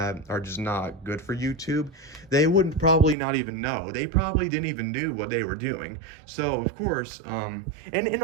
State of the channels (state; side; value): drops out; left; at 3.2 s